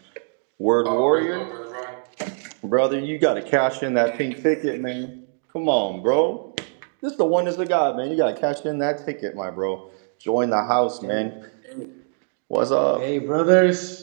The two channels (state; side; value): silent; left; digital silence